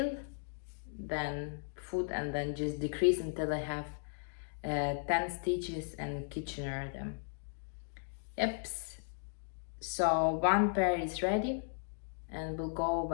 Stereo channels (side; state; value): right; silent; digital silence